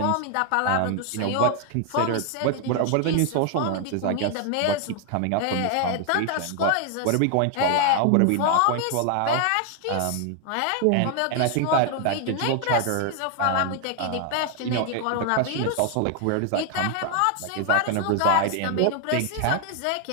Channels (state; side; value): different; both; correlation 0.00